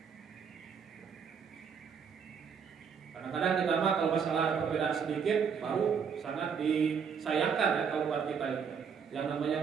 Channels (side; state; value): left; quieter; 6.6 dB